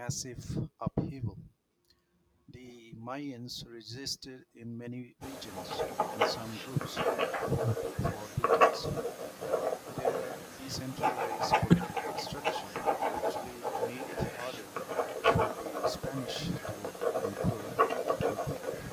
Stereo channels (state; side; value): identical; both; correlation 1.00